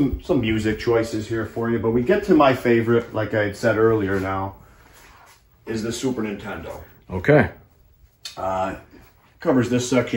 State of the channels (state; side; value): identical; both; correlation 1.00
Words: music choices here for you, but we get to my favorite, like I had said earlier now, is the Super Nintendo. Okay. Covers this